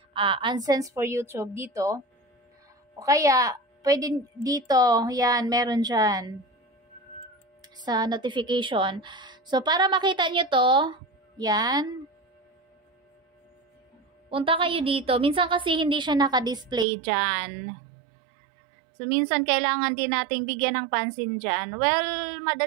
AdSense for YouTube dito. O kaya, pwede dito, yan, meron dyan sa notification. So, para makita nyo to, yan, punta kayo dito. Minsan kasi hindi siya naka-display dyan. So, minsan kailangan din nating bigyan ng pansin dyan. Well,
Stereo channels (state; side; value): drops out; left; at 16.9 s